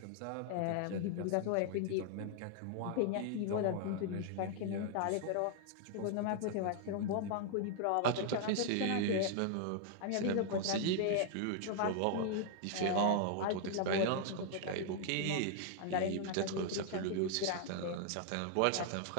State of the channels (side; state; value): both; different; correlation 0.00